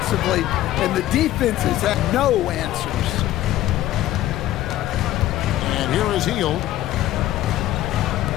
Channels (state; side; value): quieter; right; 14.2 dB